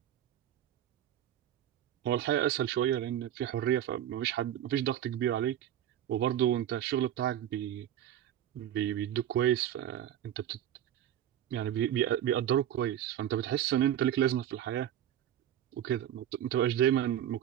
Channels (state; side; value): quieter; left; 11.1 dB